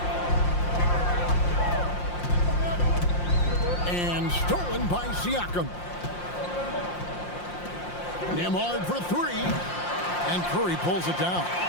And stolen by Siakam. Nembhard for 3. And Curry pulls it down.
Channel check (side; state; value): right; late; 5.7 ms